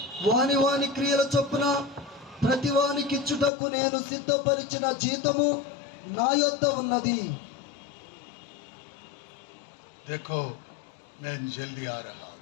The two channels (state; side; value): drops out; right; at 3.5 s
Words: వాని వాని క్రియల చొప్పున ప్రతి వానికి ఇచ్చుటకు నేను సిద్ధపరిచిన జీతము నా యొద్ద ఉన్నది. देखो मैं जल्दी आ रहा.